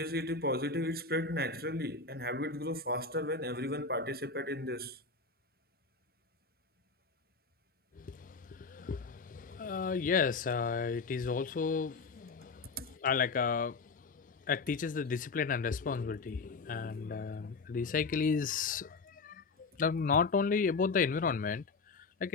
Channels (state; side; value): quieter; right; 4.2 dB